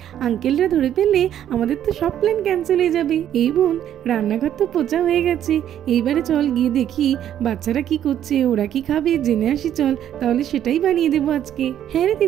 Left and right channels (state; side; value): quieter; left; 10.7 dB